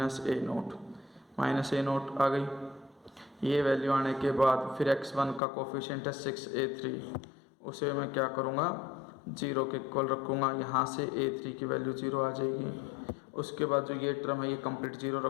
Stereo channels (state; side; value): drops out; right; at 5.4 s